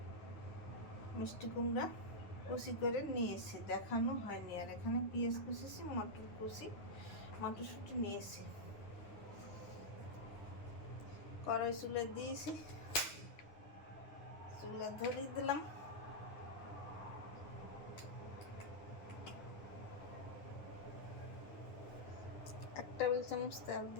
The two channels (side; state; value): right; late; 9.8 ms